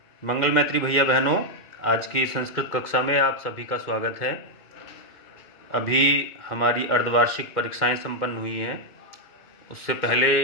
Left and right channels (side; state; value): right; late; 2.2 ms